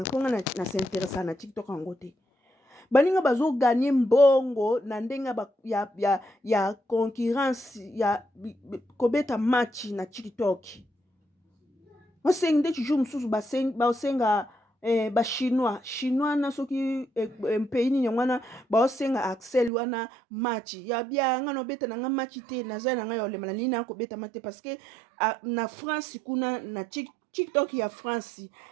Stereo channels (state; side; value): drops out; left; at 19.7 s